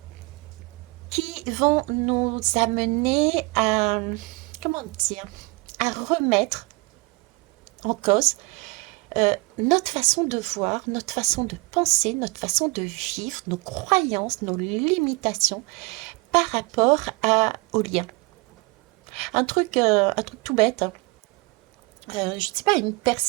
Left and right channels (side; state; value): left; quieter; 26.3 dB